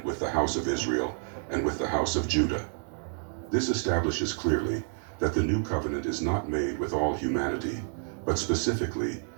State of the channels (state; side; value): silent; left; 58 dB below the other